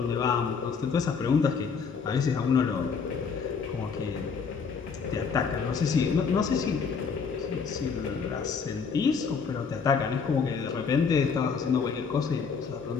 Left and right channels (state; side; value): quieter; right; 5.7 dB